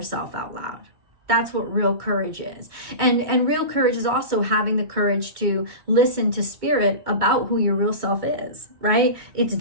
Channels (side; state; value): left; late; 2.2 ms